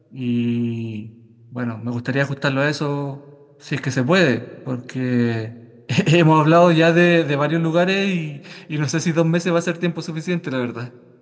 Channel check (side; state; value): both; identical; correlation 1.00